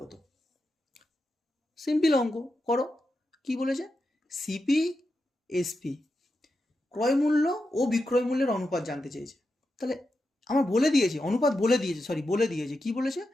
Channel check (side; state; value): both; normal; correlation 0.88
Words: সিম্পল অঙ্ক, করো। কি বলেছে? সিপি এসপি ক্রয় মূল্য ও বিক্রয় মূল্যের অনুপাত জানতে চেয়েছে। তাহলে আমার বলে দিয়েছে, অনুপাত বলে দিয়েছে, কি বলেছে